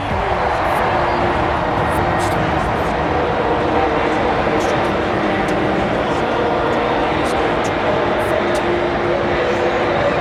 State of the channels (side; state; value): both; identical; correlation 1.00